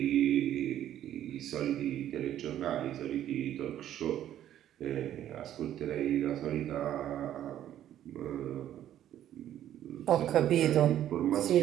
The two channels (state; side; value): quieter; left; 11.5 dB